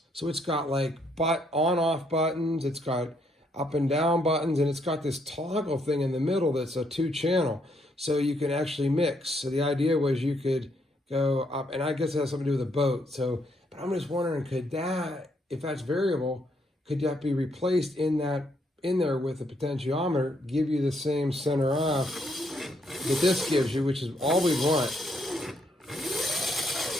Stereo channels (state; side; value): normal; both; correlation 0.73